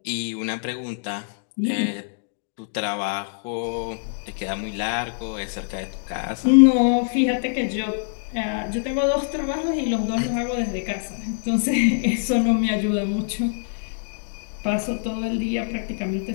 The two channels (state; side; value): silent; right; digital silence